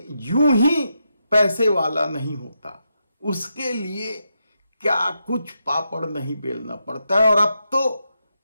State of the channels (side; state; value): both; inverted; correlation -0.84